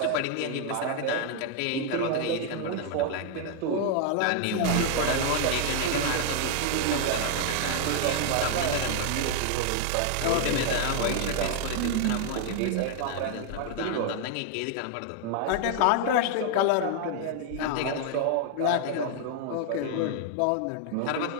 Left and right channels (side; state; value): both; different; correlation 0.00